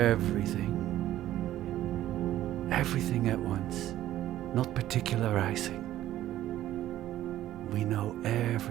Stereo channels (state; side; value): quieter; left; 13.4 dB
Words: Everything at once, not particularizing. We know